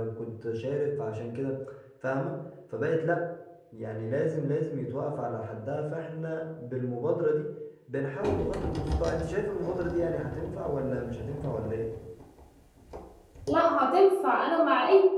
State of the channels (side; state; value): both; identical; correlation 1.00